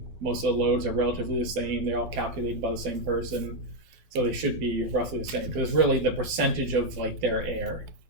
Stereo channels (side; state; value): left; late; 11 ms